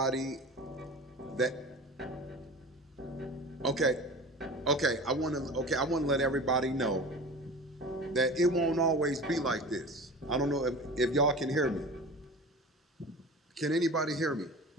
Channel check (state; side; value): normal; both; correlation 0.36